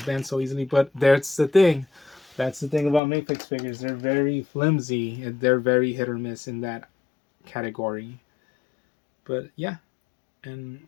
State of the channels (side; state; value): right; drops out; at 3.0 s